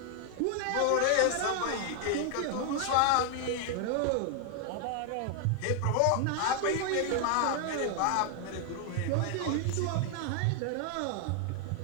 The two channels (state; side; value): different; both; correlation 0.00